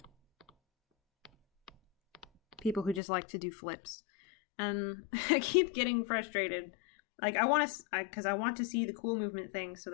people who just like to do flips. And I keep getting frustrated. Like I want to see the cool movement things so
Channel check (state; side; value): drops out; right; at 3.0 s